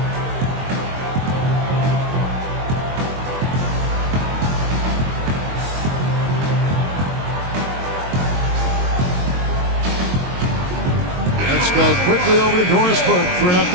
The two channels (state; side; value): late; left; 22 ms